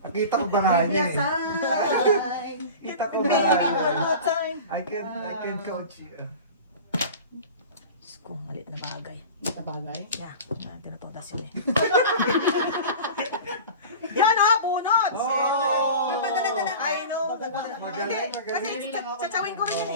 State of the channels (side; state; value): both; inverted; correlation -0.35